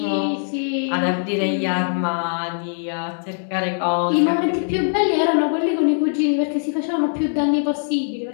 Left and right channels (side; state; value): right; silent; digital silence